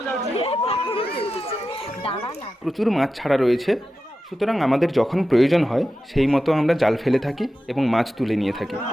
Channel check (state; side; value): normal; both; correlation 0.92